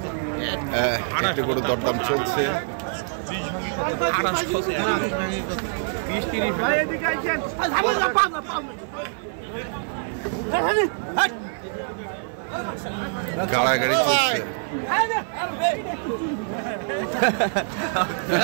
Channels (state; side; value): silent; left; 56 dB below the other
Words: একটি গরুর দরদাম চলছে। গাড়াগাড়ি চলছে।